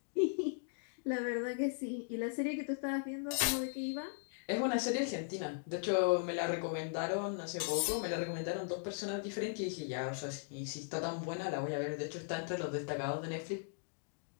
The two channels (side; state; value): right; silent; digital silence